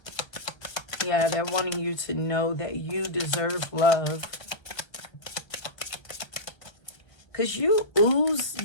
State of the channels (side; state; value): right; late; 1.3 ms